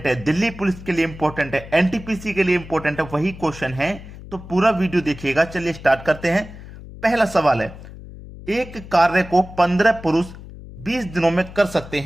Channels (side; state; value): left; noise; hum, 15 dB below the sound